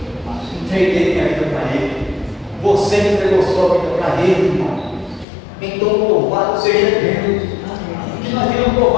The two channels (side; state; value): right; drops out; at 5.2 s